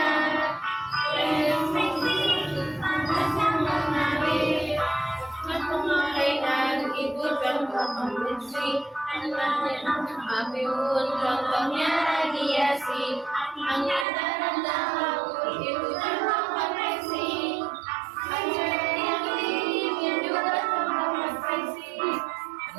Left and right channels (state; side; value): drops out; left; at 14.1 s